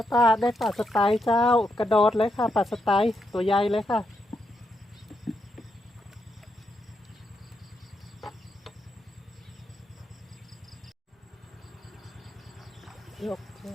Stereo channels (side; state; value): both; normal; correlation 0.81